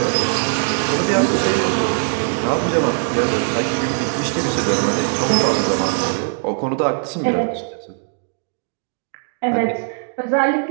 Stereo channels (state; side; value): silent; left; digital silence